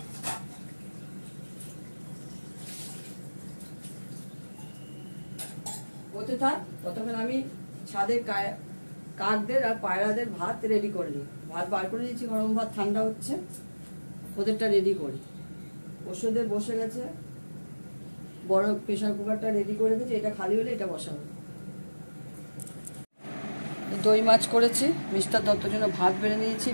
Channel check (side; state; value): both; inverted; correlation -1.00